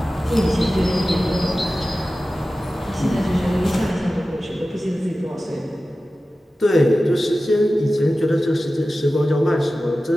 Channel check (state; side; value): normal; both; correlation 0.95